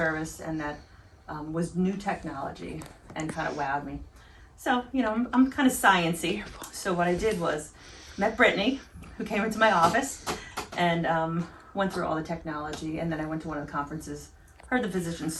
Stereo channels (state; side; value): identical; both; correlation 1.00